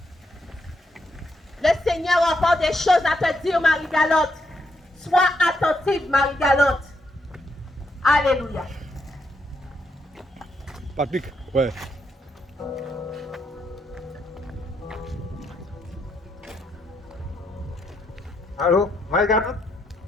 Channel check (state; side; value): normal; both; correlation 0.78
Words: Le Seigneur a encore des choses à te dire, Marie-Galotte. Sois attentive, Marie-Galotte. Alléluia. Patrick, ouais. Allô, Marie-Galotte?